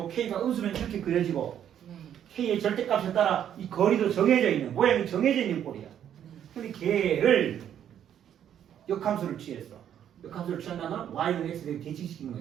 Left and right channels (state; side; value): quieter; left; 9.8 dB